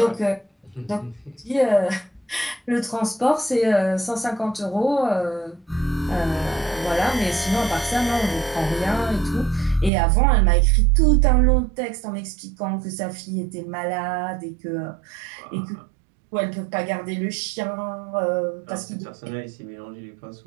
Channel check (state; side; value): drops out; left; at 9.9 s